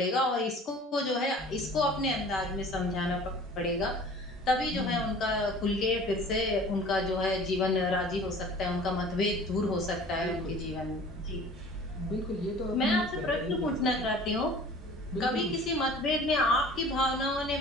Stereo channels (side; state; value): both; normal; correlation 0.46